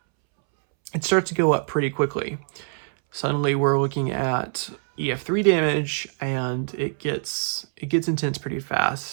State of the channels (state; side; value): silent; left; 62 dB below the other